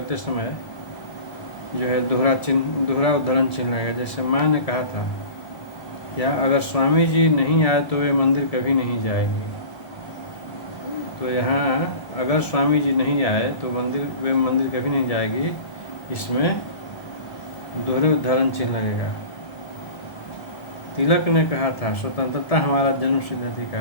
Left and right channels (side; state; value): right; late; 1.7 ms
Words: समय जो है दोहरा उद्धरण चिन्ह लगेगा। जैसे माँ ने कहा था, या अगर स्वामी जी नहीं आए तो वे मंदिर कभी नहीं जाएंगे। तो यहाँ अगर स्वामी जी नहीं आए तो वे मंदिर कभी नहीं जाएगी, इसमें दोहरे उद्धरण चिन्ह लगेगा। तिलक ने कहा था, स्वतंत्रता हमारा जन्मसिद्ध